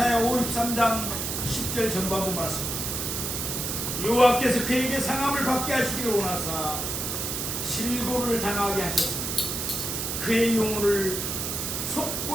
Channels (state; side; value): noise; right; hiss, 2 dB below the sound